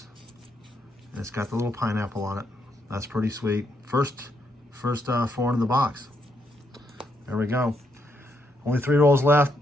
And it's got the little pineapple on it. That's pretty sweet. First foreign in the box. There we go. Only 3 rolls left.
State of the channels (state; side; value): normal; both; correlation 0.77